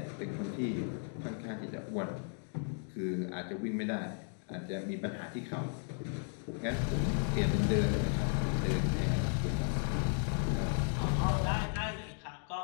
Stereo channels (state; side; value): silent; right; 54 dB below the other